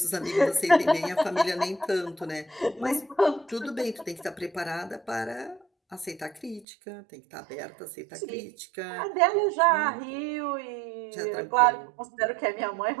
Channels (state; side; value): drops out; left; at 6.7 s